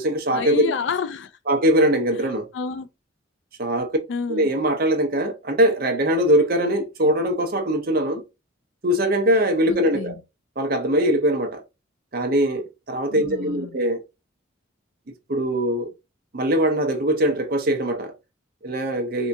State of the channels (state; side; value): normal; both; correlation 0.07